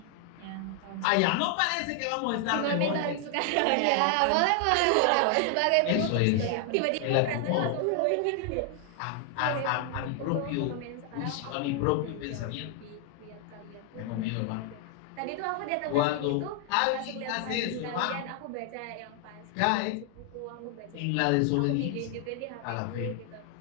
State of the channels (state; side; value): different; both; correlation 0.00